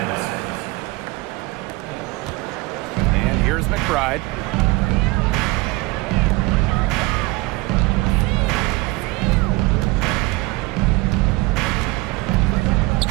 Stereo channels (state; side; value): quieter; left; 22.3 dB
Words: And here's McBride.